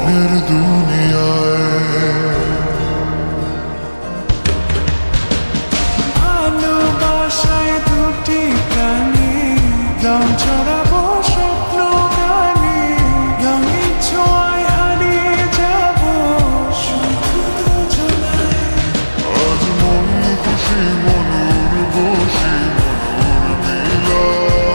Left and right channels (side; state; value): both; inverted; correlation -1.00